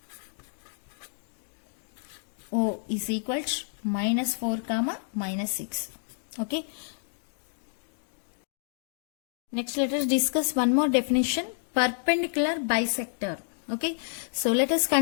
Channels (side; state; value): right; silent; digital silence